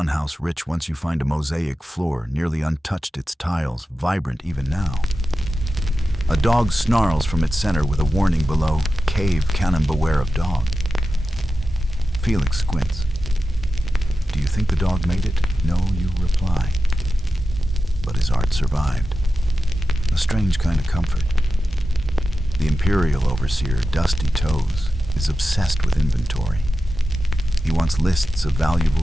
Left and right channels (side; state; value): both; normal; correlation 0.92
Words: house rich, once you find a mosaic floor, nearly untouched, its tiles vibrant even now. A dog snarls from its center with a warning below, "Cave cannon, beware of dog." Felix squints. Do you think the dog made it? No, you reply. But his art survived. A strange kind of comfort. The imperial overseer, Dusty Toes, is obsessed with inventory. He wants lists of